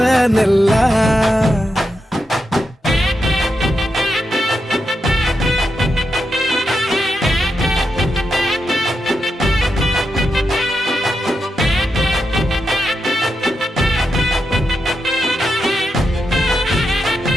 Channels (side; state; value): both; normal; correlation 0.86